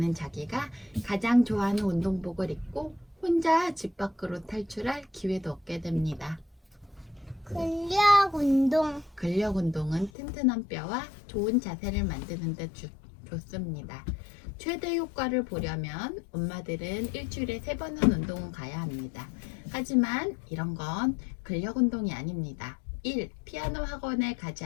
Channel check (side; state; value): right; drops out; at 10.1 s